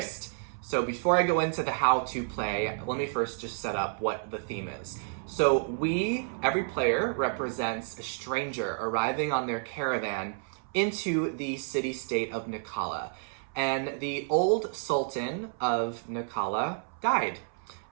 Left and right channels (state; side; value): silent; left; 58 dB below the other